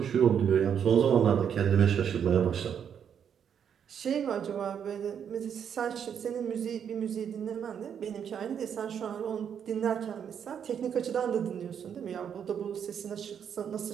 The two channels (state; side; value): quieter; left; 8.1 dB